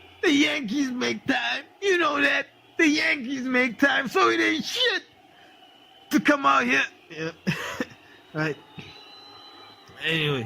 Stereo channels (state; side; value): identical; both; correlation 1.00